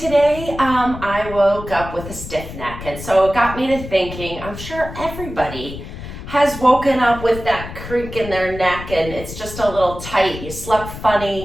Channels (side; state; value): left; noise; rumble, 11 dB below the sound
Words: I woke up with a stiff neck. And so it got me to thinking, I'm sure everybody has woken up with that creak in their neck and it's just a little tight. You slept